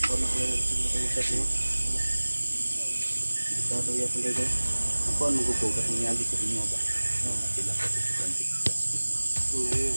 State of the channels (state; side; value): inverted; both; correlation -1.00